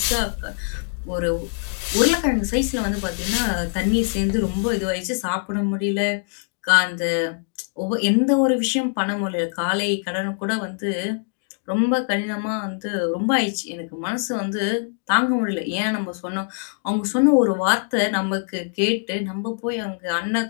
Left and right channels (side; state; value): right; silent; 63 dB below the other